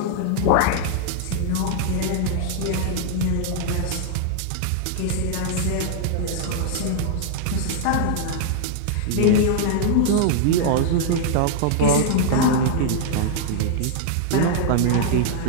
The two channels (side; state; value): both; different; correlation -0.01